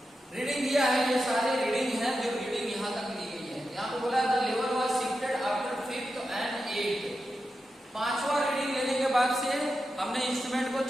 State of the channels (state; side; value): normal; both; correlation 0.89